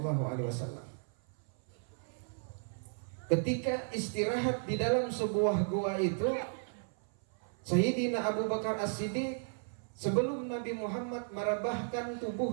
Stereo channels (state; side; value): silent; left; 55 dB below the other